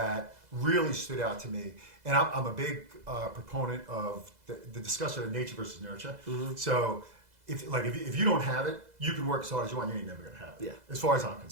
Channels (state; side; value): late; left; 2.0 ms